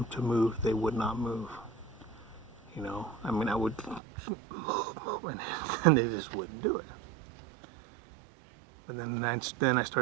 to move, they would not move. I would move, and they just wouldn't do it. But then I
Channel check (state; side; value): drops out; left; at 4.0 s